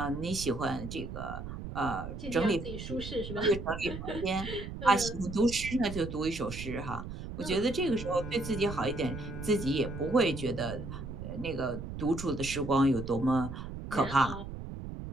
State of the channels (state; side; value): noise; right; rumble, 8 dB below the sound